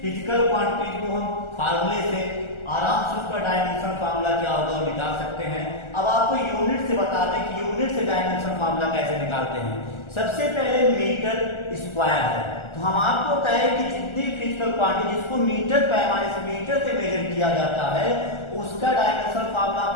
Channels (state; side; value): late; right; 1.4 ms